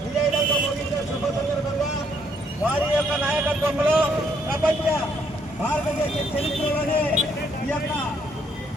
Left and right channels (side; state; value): both; normal; correlation 0.70